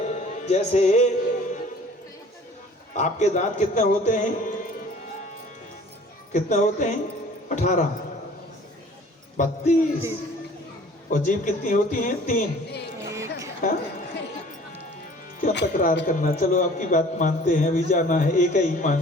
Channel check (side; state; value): both; normal; correlation 0.50